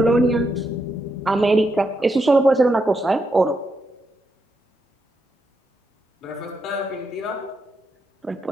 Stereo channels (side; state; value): both; normal; correlation 0.82